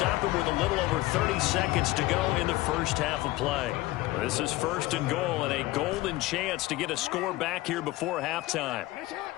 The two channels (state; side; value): quieter; right; 18.6 dB